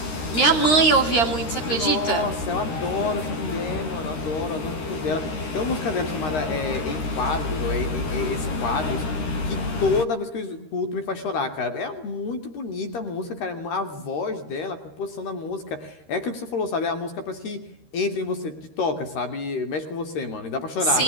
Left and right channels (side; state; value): right; late; 13 ms